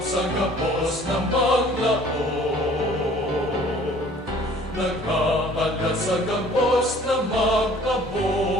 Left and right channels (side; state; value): both; normal; correlation 0.53